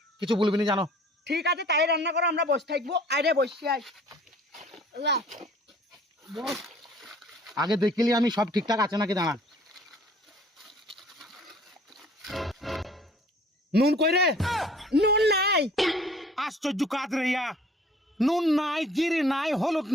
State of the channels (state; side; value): normal; both; correlation 0.52